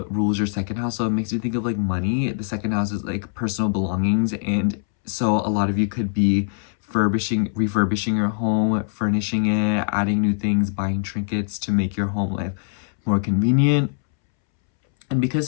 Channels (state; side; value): silent; right; 64 dB below the other